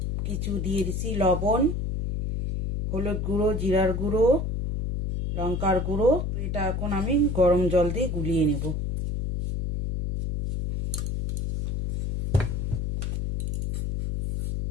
কিছু দিয়ে দিছি, লবণ, হলুদ গুঁড়ো, জিরার গুঁড়ো, লঙ্কার গুঁড়ো। এটা এখন আমি গরম জল দিয়ে গুলিয়ে নেব।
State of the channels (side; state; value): left; noise; hum, 1 dB below the sound